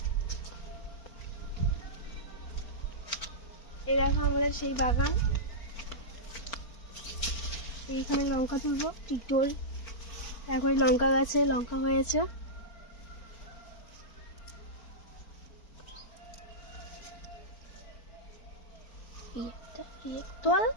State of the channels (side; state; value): right; late; 4.4 ms